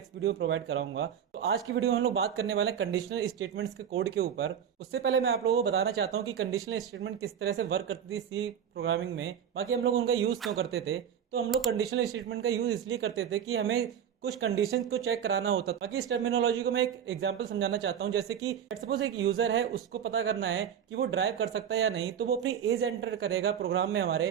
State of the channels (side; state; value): left; quieter; 8.6 dB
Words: वीडियो में प्रोवाइड कराऊंगा। तो आज की वीडियो में हम लोग बात करने वाले हैं कंडीशनल स्टेटमेंट्स के कोड के ऊपर। उससे पहले मैं आप लोगों को बताना चाहता हूँ कि कंडीशनल स्टेटमेंट किस तरह से वर्क करती थी सी प्रोग्रामिंग में, बाकी हम लोग उनका यूज़ क्यों करते थे। तो हम लोग कंडीशनल स्टेटमेंट का यूज़ इसलिए करते थे कि हमें कुछ कंडीशन को चेक कराना होता था। बाकी इस टर्मिनोलॉजी को मैं एक एग्जांपल समझाना चाहता हूँ। जैसे कि सपोज एक यूजर है, उसको पता करना है कि वो ड्राइव कर सकता है या नहीं, तो वो अपनी एज एंटर करेगा प्रोग्राम में